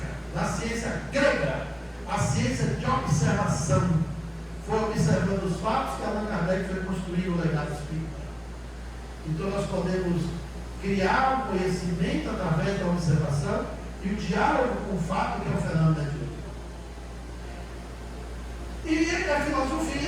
da ciência grega, a ciência de observação, foi observando os fatos que Allan Kardec foi construir o legado espírita. Então nós podemos criar o conhecimento através da observação e o diálogo com o fato, que é o fenômeno mediúnico. E a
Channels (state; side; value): identical; both; correlation 1.00